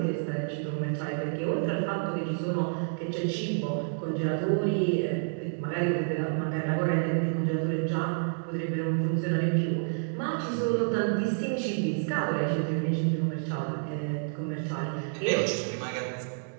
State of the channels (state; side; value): silent; left; digital silence